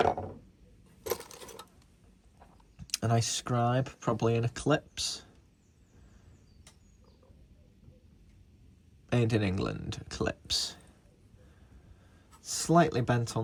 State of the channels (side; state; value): both; identical; correlation 1.00